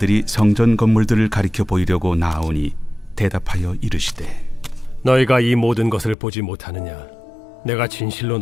성전 건물들을 가리켜 보이려고 나아오니 대답하여 이르시되, 너희가 이 모든 것을 보지 못하느냐? 내가 진실로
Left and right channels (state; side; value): drops out; right; at 6.2 s